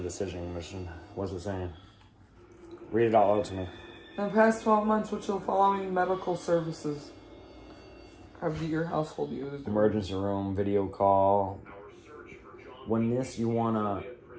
decision mission. What's it saying? Read it all out to me. In the past 12 months, which of the following medical services have your household used? Emergency room, video call. When this, you want to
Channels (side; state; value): both; identical; correlation 1.00